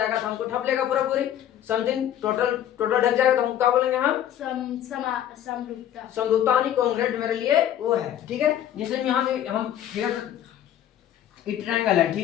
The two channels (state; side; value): quieter; right; 11.0 dB